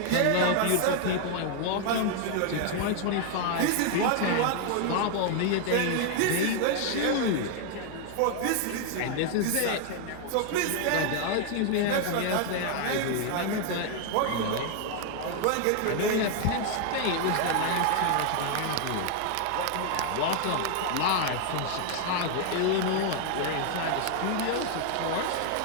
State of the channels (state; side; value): different; both; correlation 0.00